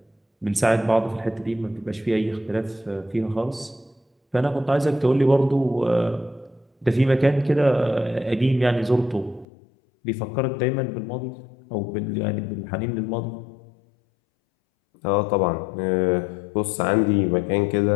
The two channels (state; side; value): drops out; right; at 9.5 s